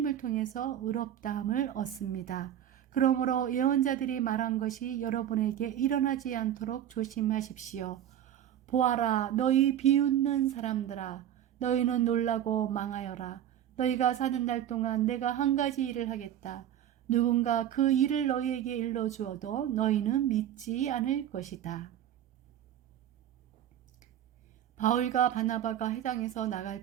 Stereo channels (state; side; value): quieter; left; 10.8 dB